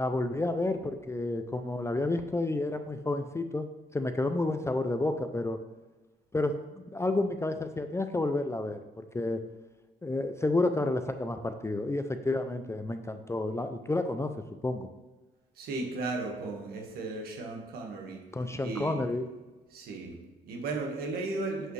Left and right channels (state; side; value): normal; both; correlation 0.80